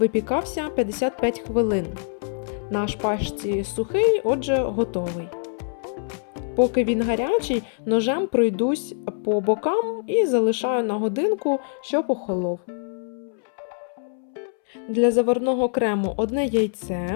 55 хвилин. На шпажці сухий, отже, готовий. Поки він гарячий, ножем пройдусь по бокам і залишаю на годинку, щоб охолов. Для заварного крему 1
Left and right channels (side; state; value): right; silent; 62 dB below the other